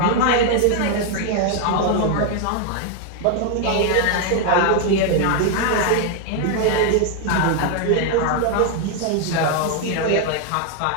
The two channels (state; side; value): different; both; correlation 0.00